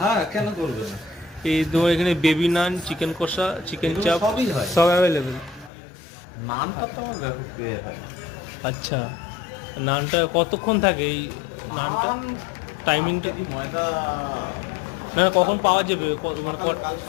হ্যাঁ, কেন করবে না? এই তোমার এখানে বেবি নান, চিকেন কষা, চিকেন এগুলো চাপ সবই হয়। সব অ্যাভেলেবেল। নামটা তো আমার ব্যাপক পেয়ে হয়। আচ্ছা, নানটা কতক্ষণ থাকে এই নানটা? নান টাইমিংটা কি ময়দা? না না, কখন পাওয়া যাবে? মানে কাল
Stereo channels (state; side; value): drops out; right; at 5.7 s